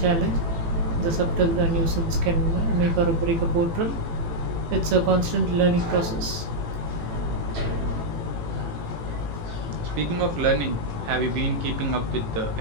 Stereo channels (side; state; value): left; late; 18 ms